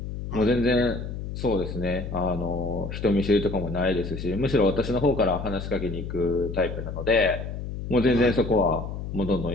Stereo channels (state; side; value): noise; left; hum, 7 dB below the sound